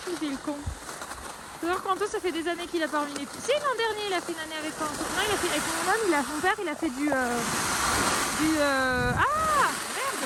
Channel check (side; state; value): both; identical; correlation 1.00